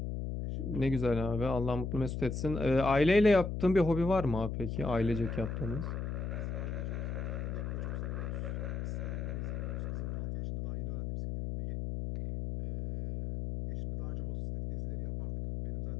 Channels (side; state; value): left; noise; hum, 3 dB below the sound